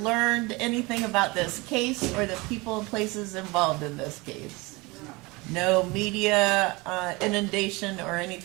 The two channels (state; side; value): quieter; left; 24.5 dB